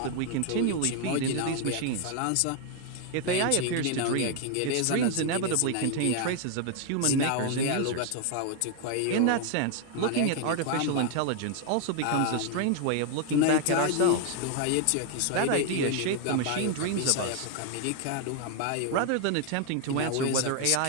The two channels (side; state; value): both; different; correlation 0.00